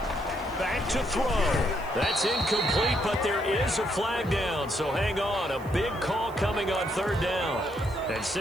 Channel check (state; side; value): noise; right; hiss, 24 dB below the sound